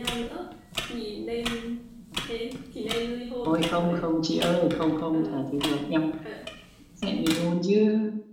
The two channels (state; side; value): identical; both; correlation 1.00